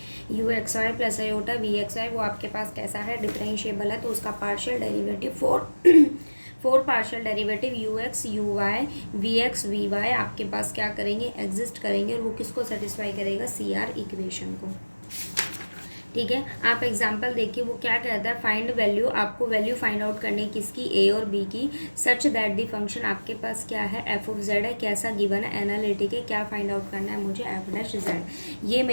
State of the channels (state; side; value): inverted; both; correlation -1.00